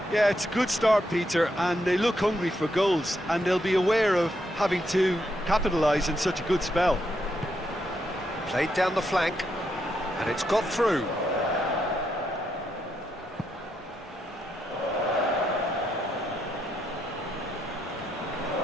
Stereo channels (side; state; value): both; normal; correlation 0.80